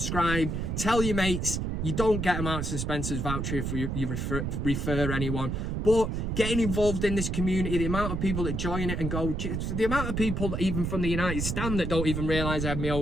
Tell your mates. You don't get a Marks and Spencer's voucher if you refer anyone. But getting involved in this community, the amount of people that join it and go, the amount of people that even from the United stand that don't even realise I have my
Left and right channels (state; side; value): noise; right; rumble, 2 dB below the sound